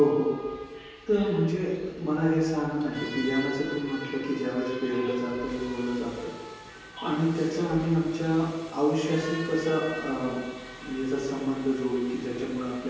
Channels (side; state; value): both; identical; correlation 1.00